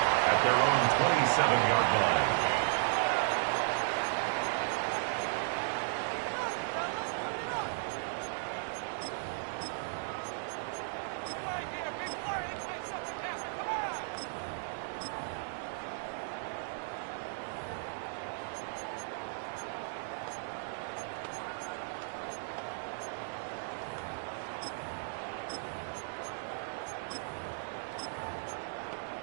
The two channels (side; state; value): left; silent; digital silence